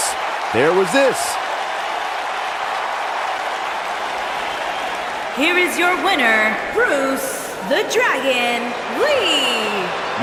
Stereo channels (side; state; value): both; identical; correlation 1.00